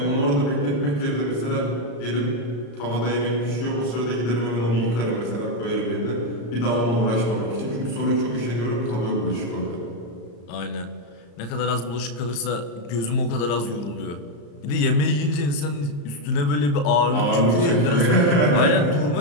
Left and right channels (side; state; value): right; late; 34 ms